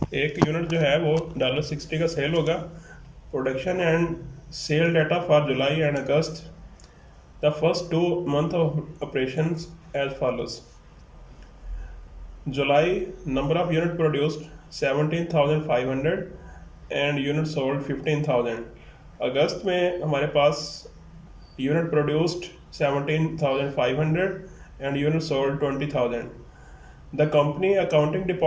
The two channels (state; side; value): identical; both; correlation 1.00